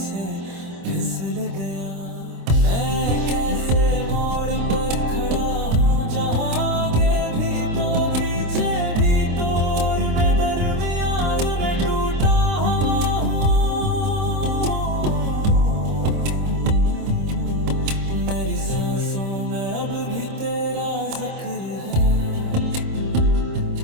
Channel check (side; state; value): left; late; 26 ms